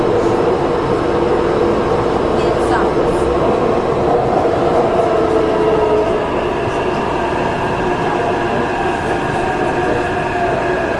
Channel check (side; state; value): both; identical; correlation 1.00